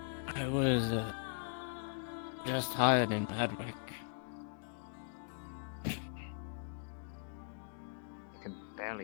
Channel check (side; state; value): right; silent; digital silence